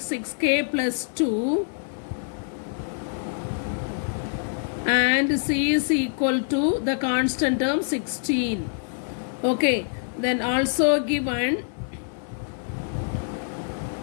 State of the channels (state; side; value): silent; right; digital silence